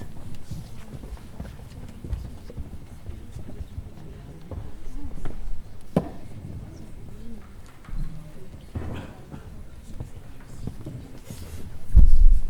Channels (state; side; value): identical; both; correlation 1.00